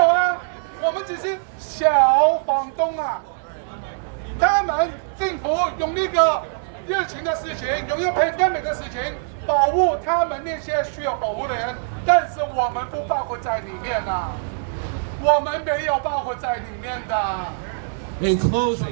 啊，我们只是小房东啊。他们政府用那个疫情的事情，用一个 pandemic 的事情保护他们那些需要保护的人，但是我们不包括在里面啊，我们没有包括在里面的。In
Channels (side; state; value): left; silent; digital silence